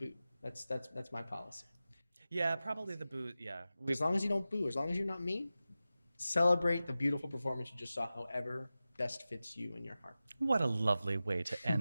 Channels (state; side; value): inverted; both; correlation -0.94